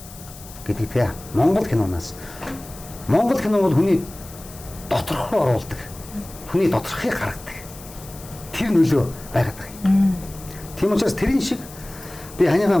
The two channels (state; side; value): noise; left; hiss, 18 dB below the sound